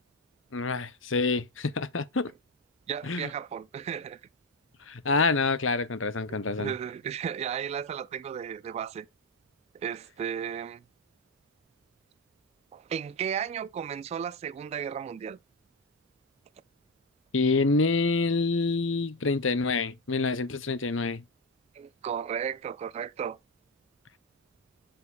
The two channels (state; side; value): normal; both; correlation 0.09